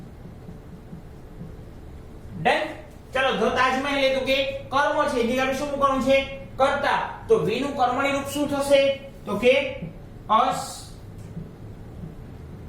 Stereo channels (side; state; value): both; identical; correlation 1.00